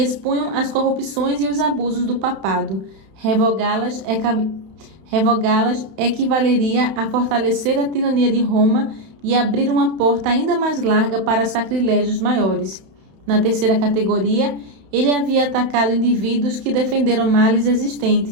as corrupções e os abusos do papado. Revogá-las equivaleria a fortalecer a tirania de Roma e abrir uma porta ainda mais larga para sacrilégios maiores. Na terceira categoria, ele havia atacado indivíduos que defenderam males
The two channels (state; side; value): late; left; 31 ms